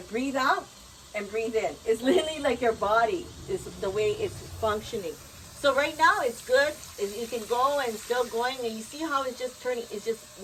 breathe out and breathe in. It's literally like your body is the way it's functioning. So right now it's good. You can go and still going, and you see how it's just turning. It just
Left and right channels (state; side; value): identical; both; correlation 1.00